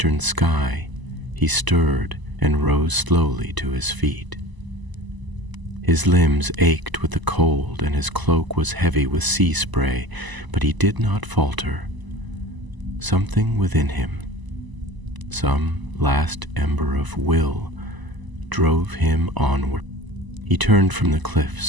sky, he stirred and rose slowly to his feet. His limbs ached with the cold, and his cloak was heavy with sea spray, but he did not falter. Something within him, some last ember of will, drove him onward. He turned from the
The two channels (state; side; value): late; left; 1.0 ms